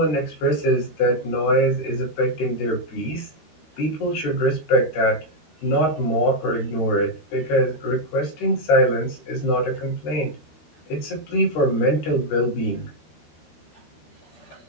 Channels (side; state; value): right; late; 13 ms